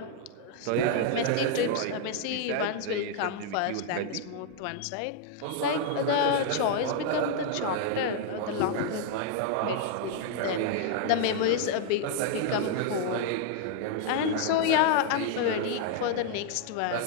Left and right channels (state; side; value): different; both; correlation -0.01